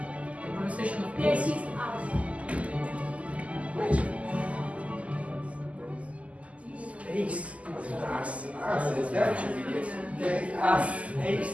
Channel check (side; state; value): left; late; 0.067 ms